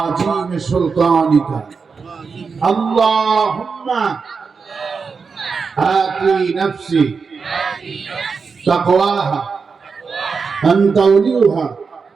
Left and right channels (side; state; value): left; quieter; 5.2 dB